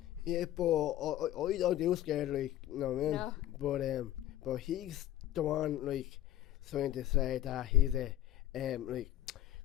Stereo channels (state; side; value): quieter; right; 13.1 dB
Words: Yeah, but I don't do scared, like, you know what I mean? No. But he's the one, like, trying to say that he's like